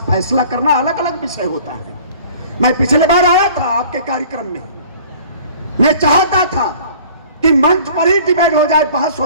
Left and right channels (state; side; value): inverted; both; correlation -0.49